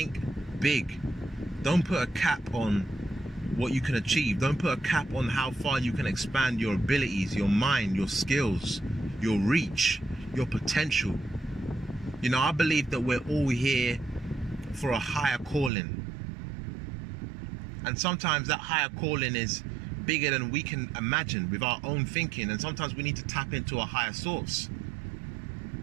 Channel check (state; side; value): drops out; left; at 15.7 s